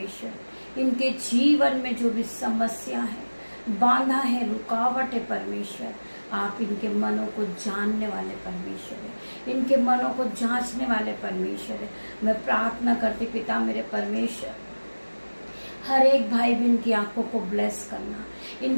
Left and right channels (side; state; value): both; inverted; correlation -1.00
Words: इनके जीवन में जो भी समस्या है, बांधा है, रुकावट है, परमेश्वर आप इनके मनों को जानने वाले परमेश्वर है, इनके मनों को जांचने वाले परमेश्वर है। मैं प्रार्थना करती पिता मेरे परमेश्वर हर एक भाई बहन की आंखों को ब्लेस करना,